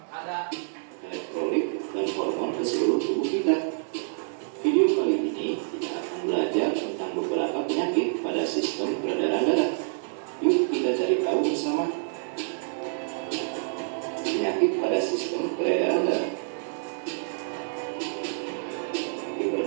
ada elektrolit dan hormon ke seluruh tubuh kita. Video kali ini kita akan belajar tentang beberapa penyakit pada sistem peredaran darah. Yuk kita cari tahu bersama. Penyakit pada sistem peredaran darah.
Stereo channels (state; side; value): silent; left; digital silence